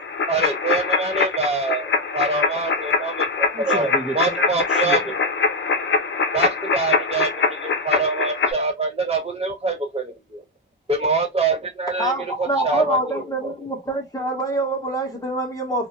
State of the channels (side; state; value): both; normal; correlation 0.06